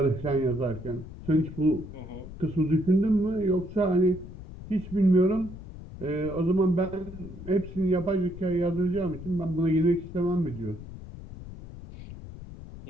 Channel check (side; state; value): left; noise; rumble, 13 dB below the sound